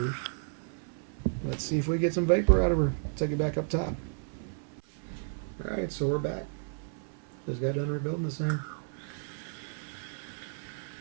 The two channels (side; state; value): left; silent; 56 dB below the other